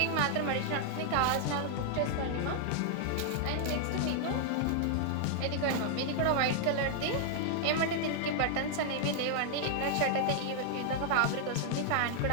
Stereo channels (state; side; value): different; both; correlation 0.00